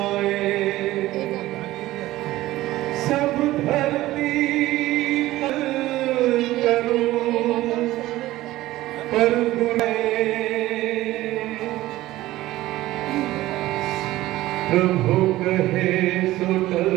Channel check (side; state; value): left; quieter; 16.5 dB